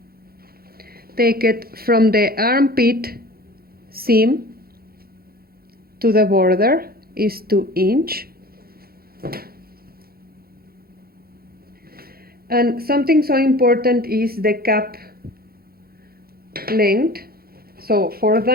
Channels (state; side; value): late; left; 0.44 ms